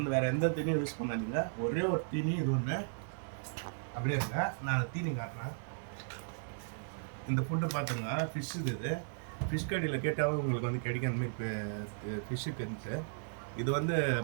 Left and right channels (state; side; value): silent; left; digital silence